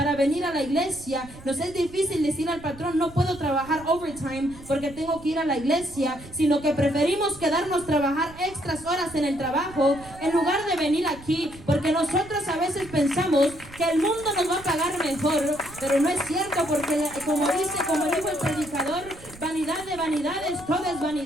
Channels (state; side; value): noise; right; rumble, 18 dB below the sound